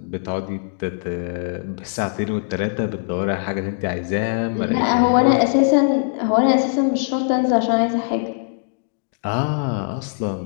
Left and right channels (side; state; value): right; silent; digital silence